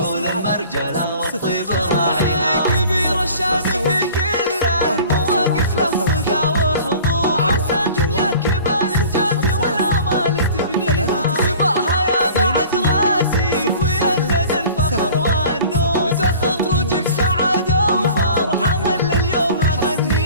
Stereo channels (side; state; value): both; inverted; correlation -0.45